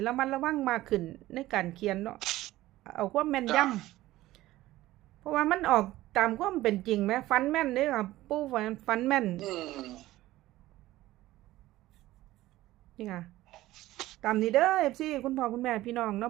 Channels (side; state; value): left; quieter; 16.3 dB